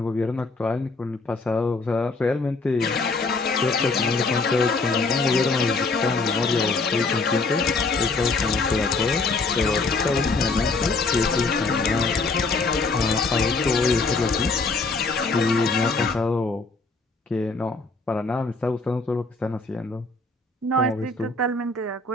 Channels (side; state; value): right; quieter; 3.7 dB